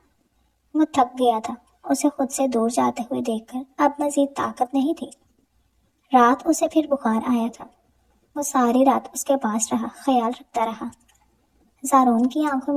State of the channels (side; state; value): both; identical; correlation 1.00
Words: وہ تھک گیا تھا، اسے خود سے دور جاتے ہوئے دیکھ کر اب مزید طاقت نہیں تھی۔ رات اسے پھر بخار آیا تھا۔ وہ ساری رات اس کے پاس رہا، خیال رکھتا رہا۔ زارون کی آنکھوں